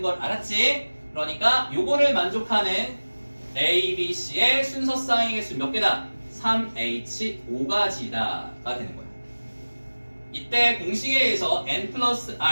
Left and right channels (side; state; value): both; inverted; correlation -1.00